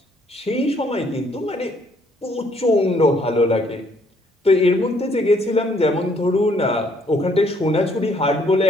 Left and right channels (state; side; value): normal; both; correlation 0.66